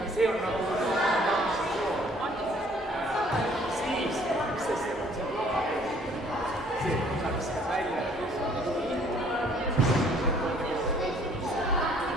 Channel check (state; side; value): normal; both; correlation 0.59